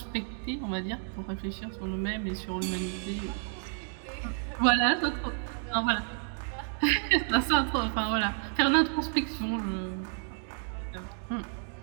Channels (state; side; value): silent; left; 57 dB below the other